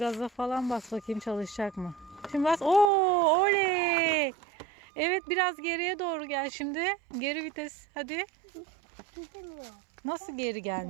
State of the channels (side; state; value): left; drops out; at 2.9 s